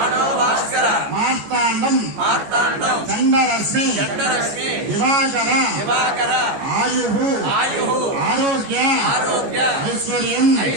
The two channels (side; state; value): left; late; 14 ms